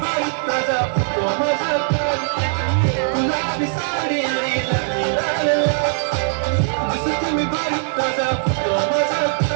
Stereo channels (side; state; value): left; silent; 66 dB below the other